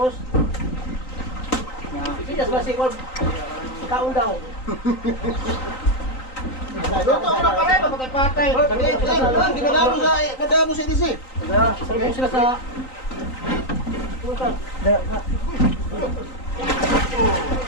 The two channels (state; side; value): late; right; 3.9 ms